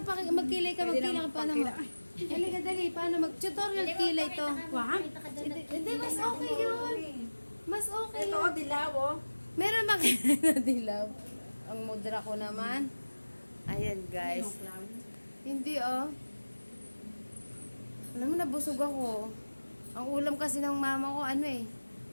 ka. Magkilay ka. Paano mo? Dali ka, dali. Paano? Mag-tutorial kilay to. Wag? Hindi, mas okay yun. Mas okay Ito, yun. dilaw, oh. Meron makilay na dilaw. Ang mudra ko naman. Ayan, guys. Hindi, oh. Alam mo, nabusog ako. Ang ulam kasi ng mama ko,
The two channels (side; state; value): both; inverted; correlation -1.00